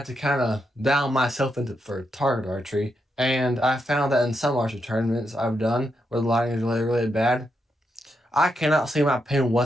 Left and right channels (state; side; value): normal; both; correlation 0.82